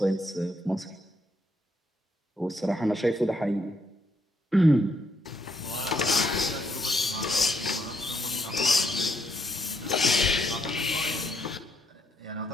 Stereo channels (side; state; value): both; normal; correlation 0.74